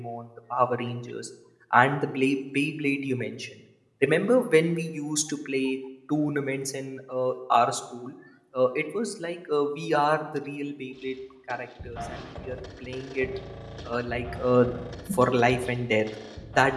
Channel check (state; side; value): identical; both; correlation 1.00